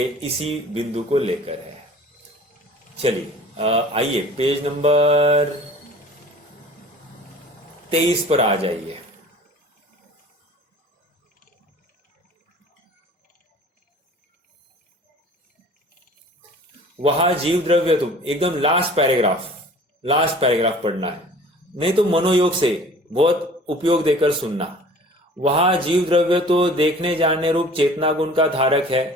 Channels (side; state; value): both; normal; correlation 0.46